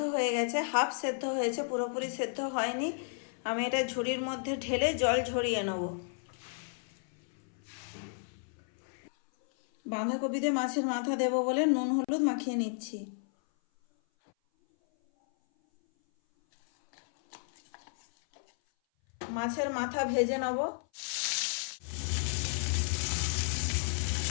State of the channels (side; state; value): right; silent; 56 dB below the other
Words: হয়ে গেছে, হাফ সেদ্ধ হয়েছে, পুরোপুরি সেদ্ধ হয়নি। আমি এটা ঝুড়ির মধ্যে ঢেলে জল ঝরিয়ে নেব। বাঁধাকপিতে মাছের মাথা দেব বলে নুন হলুদ মাখিয়ে নিচ্ছি। মাছের মাথা ভেজে নেব।